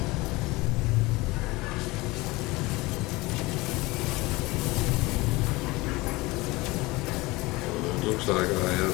Looks like I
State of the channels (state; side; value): quieter; right; 22.1 dB